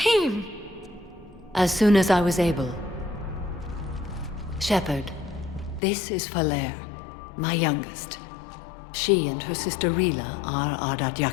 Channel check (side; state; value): right; drops out; at 5.8 s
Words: As soon as I was able. Shepard, this is Falere, my youngest. She and her sister Rila are